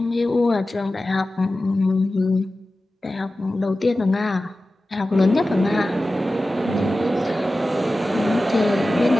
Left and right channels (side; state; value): both; normal; correlation 0.95